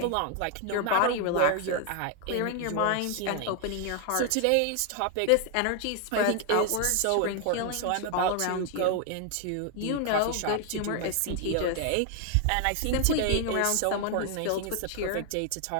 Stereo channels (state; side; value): different; both; correlation 0.00